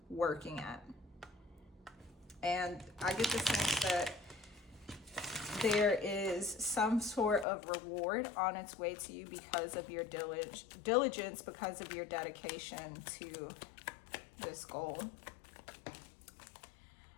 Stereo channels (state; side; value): drops out; right; at 7.5 s